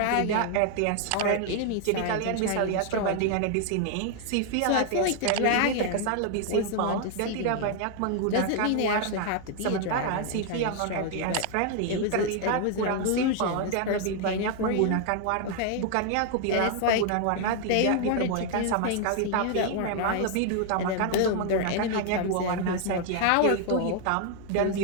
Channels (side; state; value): both; different; correlation 0.00